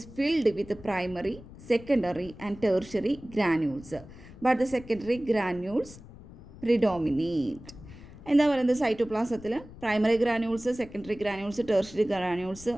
filled with primary, secondary and tertiary granules, but the secondary granules predominate. എന്താ പറയുന്നത്, സൈറ്റോപ്ലാസത്തിൽ primary granules, secondary granules, tertiary granules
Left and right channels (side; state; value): left; noise; rumble, 18 dB below the sound